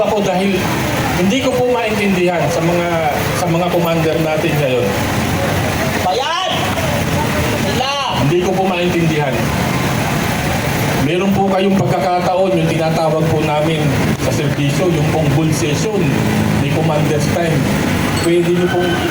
ako dahil hindi ko po maintindihan sa mga commander natin ngayon. Bayad! Sila! Hindi ko po maintindihan. Meron po kayong pagkakataon, yung tinatawag po namin sa serbisyo, yung pong bull session ni Commander's Time. Pwede nyo pong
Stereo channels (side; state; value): both; identical; correlation 1.00